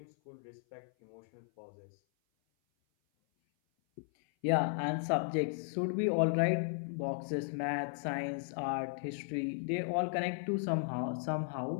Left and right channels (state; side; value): silent; right; 54 dB below the other